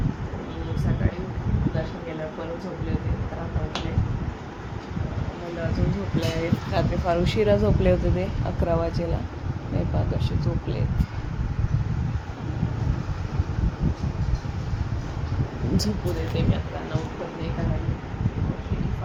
मी सकाळी दर्शन केल्यावर परत झोपले होते, तर आता उठले. मुलं अजून झोपले आहेत. रात्री फार उशिरा झोपले होते ते 11 वाजेला. हे पहा कसे झोपले आहेत. झोपू देते मी आता, त्यांना उठवत नाही, कारण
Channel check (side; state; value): both; identical; correlation 1.00